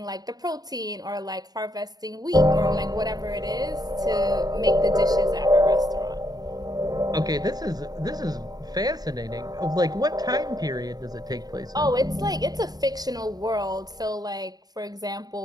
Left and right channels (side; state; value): left; late; 0.19 ms